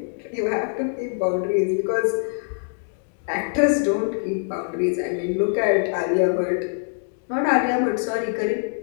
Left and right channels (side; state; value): right; silent; digital silence